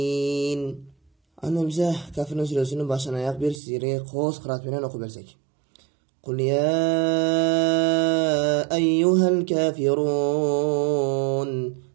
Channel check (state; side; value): drops out; left; at 3.6 s